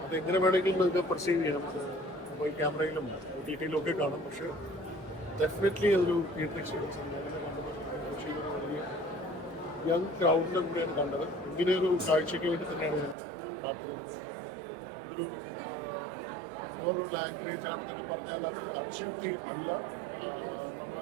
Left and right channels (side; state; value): left; drops out; at 13.2 s